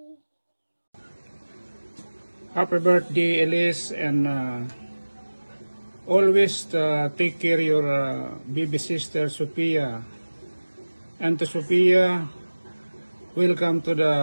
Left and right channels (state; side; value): inverted; both; correlation -1.00